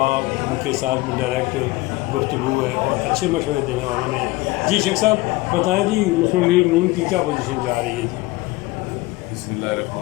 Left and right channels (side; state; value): right; quieter; 20.5 dB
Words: ان کے ساتھ بھی ڈائریکٹ گفتگو ہے اور اچھے مشورے دینے والوں میں ہیں۔ جی شیخ صاحب بتائیں جی، مسلم لیگ نون کی کیا پوزیشن جا رہی ہے؟ جی بسم اللہ